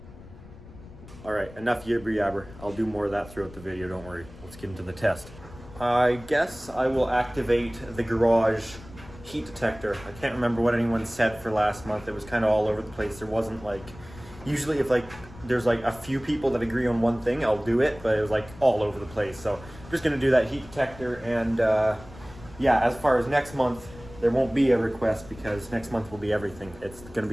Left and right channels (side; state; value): left; noise; rumble, 18 dB below the sound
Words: All right, enough yibber yabber. I'll do more of that throughout the video, don't worry. Let's get into the test. I guess I will activate the garage heat detector. I can't remember what anyone said for last month. It was kind of all over the place. There wasn't like, usually if like there's like a few people that agree on one thing, I'll do it, but it was like all over the place. So I'm just gonna do that heat detector, and yeah, as far as next month, there won't be a request because next month will be everything. It's gonna